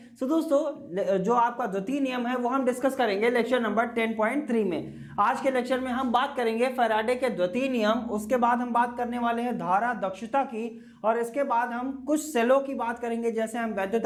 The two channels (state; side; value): identical; both; correlation 1.00